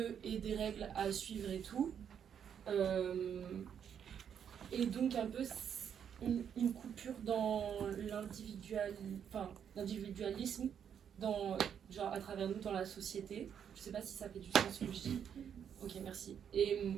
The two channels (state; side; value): quieter; left; 8.2 dB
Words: et des règles à suivre et tout. Et donc un peu une coupure dans l'individualisme, genre à travers nous dans la société. Je sais pas si ça fait du sens ce que je dis. Ok, merci. Et